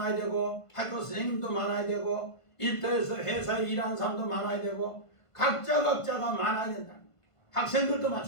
되고 학교 선생님도 많아야 되고 일터에서 회사에 일하는 사람도 많아야 되고 각자가 많아야 된다. 학생들도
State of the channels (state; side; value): late; right; 1.5 ms